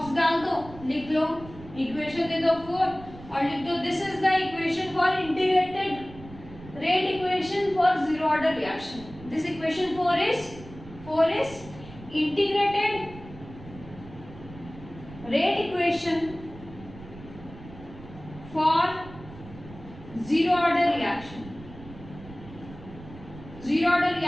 डाल दो, लिख लो, इक्वेशन दे दो 4 और लिख दो this is the equation for integrated rate equation for zero order reaction. This equation 4 is integrated rate equation for zero order reaction, zero order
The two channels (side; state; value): right; noise; rumble, 17 dB below the sound